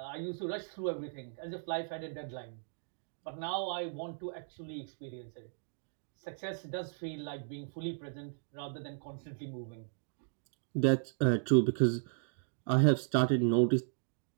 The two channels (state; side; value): silent; left; digital silence